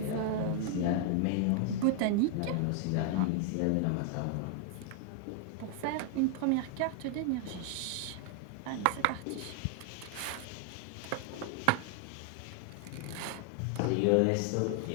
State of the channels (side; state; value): both; different; correlation 0.00